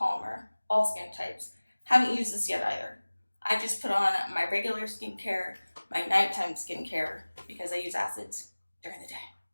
all skin types. Haven't used this yet either. I just put on my regular skincare, my nighttime skincare, because I use acids during the day.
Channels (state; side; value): inverted; both; correlation -1.00